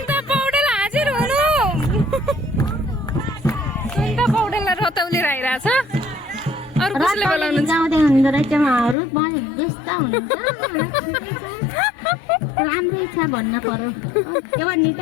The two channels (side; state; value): right; drops out; at 9.0 s